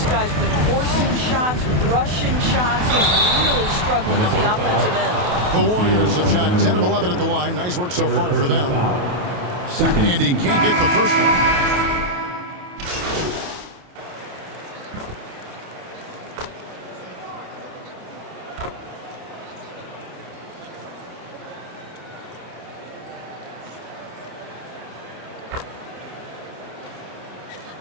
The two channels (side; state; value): left; late; 28 ms